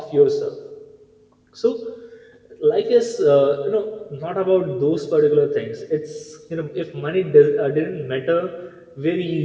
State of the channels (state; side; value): identical; both; correlation 1.00